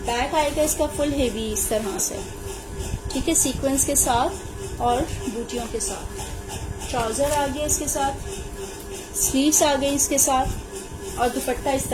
बैक आएगा इसका फुल हेवी इस तरह से, ठीक है, सीक्वेंस के साथ और बूटियों के साथ। ट्राउजर आ गया इसके साथ, स्लीव्स आ गई इसके साथ और दुपट्टा इस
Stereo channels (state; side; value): identical; both; correlation 1.00